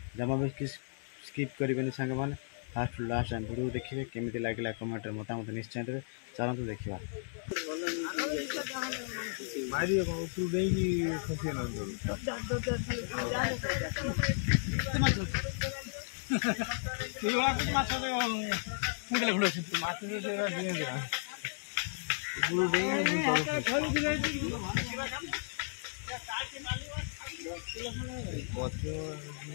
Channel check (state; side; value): silent; right; digital silence